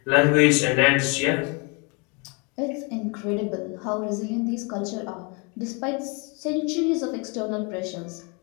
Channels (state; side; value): quieter; right; 32.4 dB